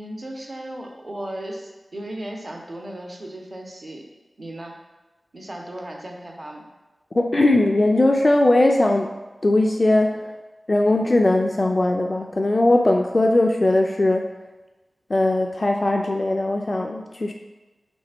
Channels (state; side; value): normal; both; correlation 0.97